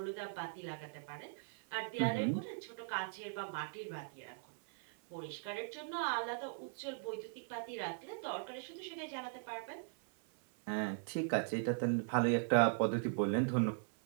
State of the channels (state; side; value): silent; left; 51 dB below the other